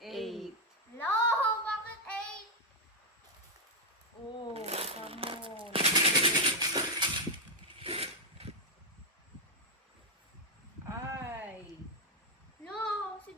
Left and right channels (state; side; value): normal; both; correlation 0.01